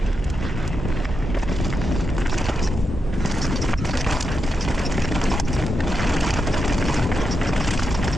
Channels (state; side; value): normal; both; correlation 0.86